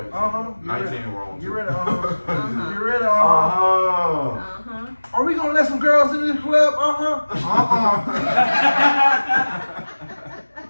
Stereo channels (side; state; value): both; inverted; correlation -1.00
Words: Get 19 ready. wrong. Get too. ready. Uh-huh. Get ready. Uh-huh. Are we gonna let some girls in this club?